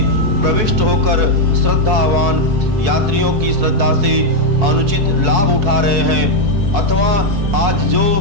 प्रविष्ट होकर श्रद्धावान यात्रियों की श्रद्धा से अनुचित लाभ उठा रहे हैं, अथवा आज जो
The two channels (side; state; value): left; late; 4.6 ms